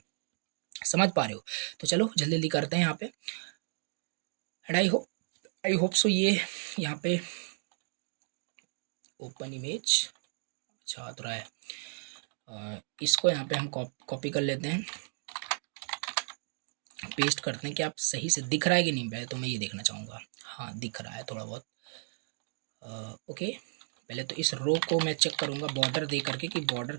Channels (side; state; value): left; silent; digital silence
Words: समझ पा रहे हो। तो चलो जल्दी जल्दी करते हैं यहाँ पे, एंड आई होप सो ये यहाँ पे ओपन इमेज अच्छा आ रहा है। इसको यहाँ पे हम कॉपी कर लेते हैं, पेस्ट करते हैं, कि आप सही से दिख रहा है कि नहीं, पहले तो मैं ये देखना चाहूँगा, हाँ दिख रहा है थोड़ा बहुत, ओके। पहले तो इस रो को मैं चेक करूँगा बॉर्डर दे करके कि बॉर्डर